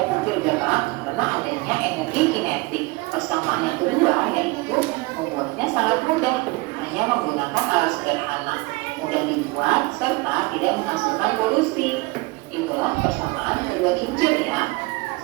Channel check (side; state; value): left; quieter; 24.2 dB